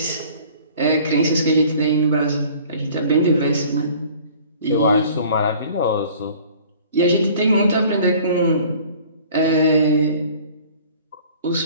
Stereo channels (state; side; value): inverted; both; correlation -0.50